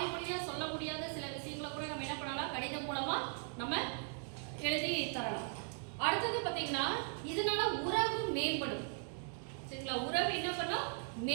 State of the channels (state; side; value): silent; left; 52 dB below the other